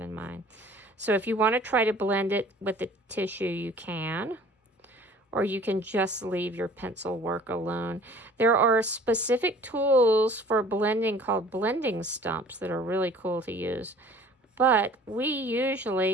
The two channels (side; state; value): both; normal; correlation 0.50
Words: mine. So if you want to try to blend it with the tissue, you can. Or you can just leave your pencil work alone. There are specific tools for blending called blending stumps that are really cool to use. But we